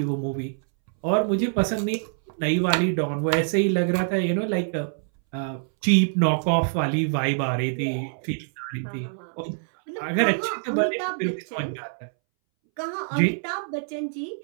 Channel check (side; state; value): left; silent; 62 dB below the other